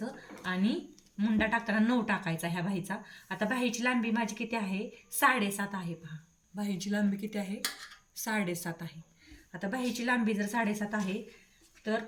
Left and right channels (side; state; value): both; identical; correlation 1.00